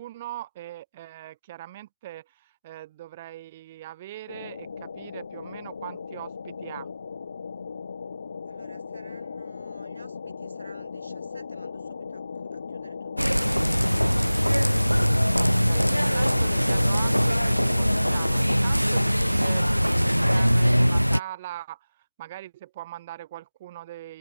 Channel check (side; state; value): both; inverted; correlation -0.98